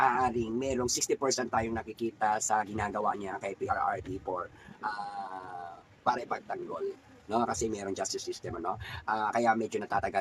merong 60% tayong nakikita sa ginagawa niya kay PRRD para ipagtanggol, no? Kasi merong justice system, ano? Kaya medyo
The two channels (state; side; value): identical; both; correlation 1.00